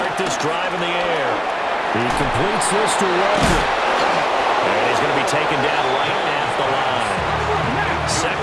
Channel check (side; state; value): both; identical; correlation 1.00